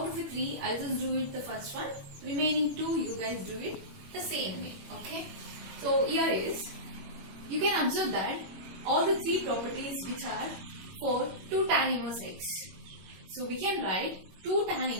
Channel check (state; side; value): late; left; 21 ms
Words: of the three, I'll just do it the first one. Remaining two, you guys do it the same way. Okay. So here is, you can observe that all the three properties which are for 2 tan inverse x. So we can write 2 tan